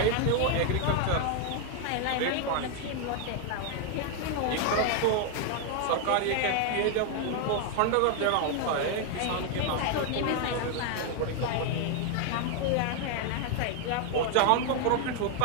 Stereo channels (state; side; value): different; both; correlation 0.00